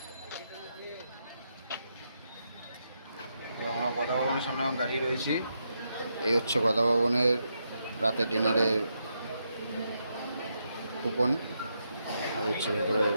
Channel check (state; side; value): inverted; both; correlation -0.82